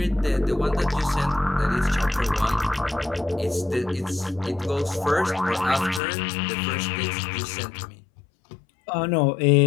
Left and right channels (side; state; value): right; drops out; at 6.0 s